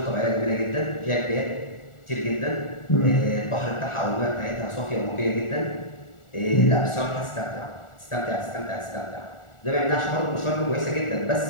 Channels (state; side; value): late; right; 1.4 ms